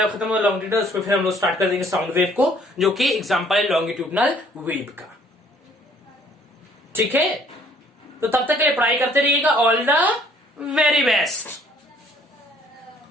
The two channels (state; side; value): normal; both; correlation 0.59